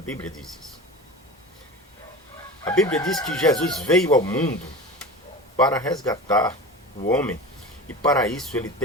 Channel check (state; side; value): normal; both; correlation 0.31